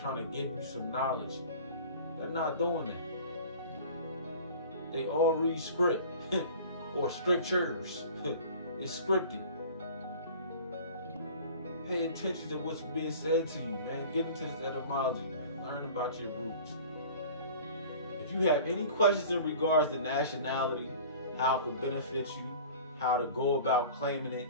to give you some knowledge. They're not doing that. They all read script or strictures. It's scripted. Pay attention to what's being said to you, man. Get into this etymology, man. Learn about your roots. If you have any questions in regards to nationality, how it could benefit you, how to go about claiming it,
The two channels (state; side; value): inverted; both; correlation -0.42